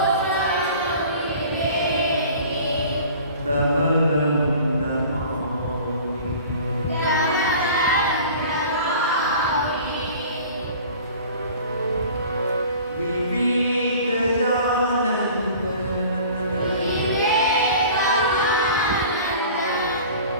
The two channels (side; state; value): both; inverted; correlation -0.44